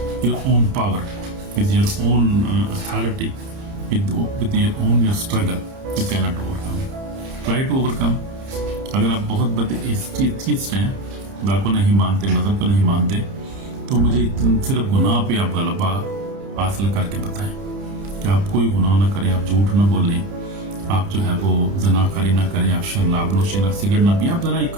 your own power, with your own authority, with your own your struggle. You cannot overcome. Try to overcome. अगर आप बहुत बड़े atheist हैं, खुदा को नहीं मानते, मजहब को नहीं मानते, तो मुझे सिर्फ गुनाह पे आप गलबा हासिल करके बताएं कि आप कोई गुनाह ना करें, आप झूठ ना बोलें, आप जो है वो जनाकारी ना करें, आप शराब नोशी ना, सिगरेट ना पिए। आप जरा ये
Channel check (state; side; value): late; left; 30 ms